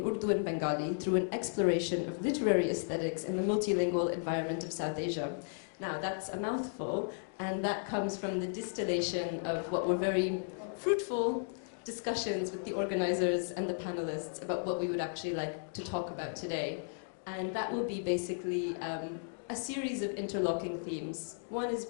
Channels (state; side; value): silent; right; digital silence